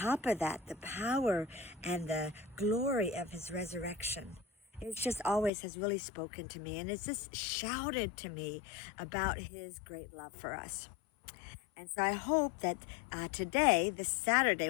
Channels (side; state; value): right; drops out; at 5.5 s